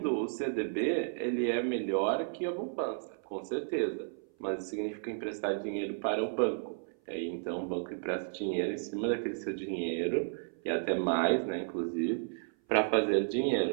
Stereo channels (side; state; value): left; silent; 56 dB below the other